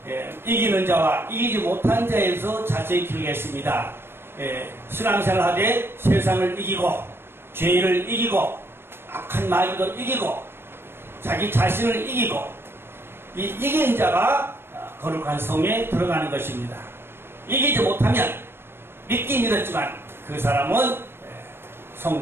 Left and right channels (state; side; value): late; left; 0.11 ms